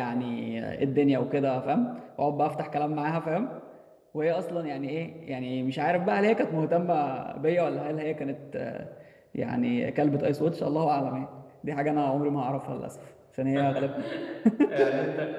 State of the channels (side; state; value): both; identical; correlation 1.00